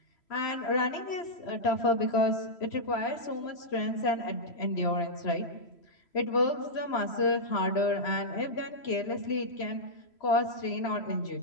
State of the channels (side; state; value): right; late; 3.0 ms